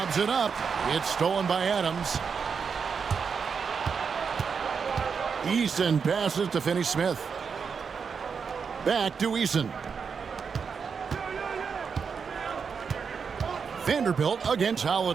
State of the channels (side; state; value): left; quieter; 6.0 dB